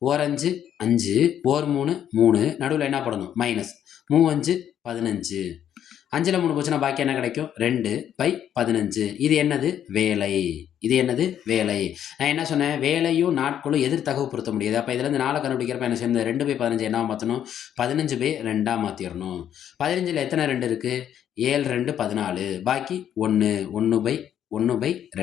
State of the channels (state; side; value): quieter; right; 10.0 dB